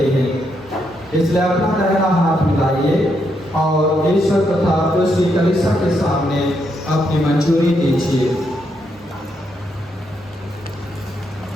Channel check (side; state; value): both; normal; correlation 0.79